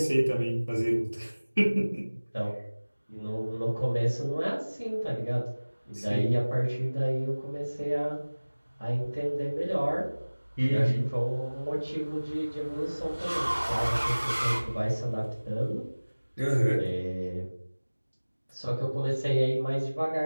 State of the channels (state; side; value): inverted; both; correlation -1.00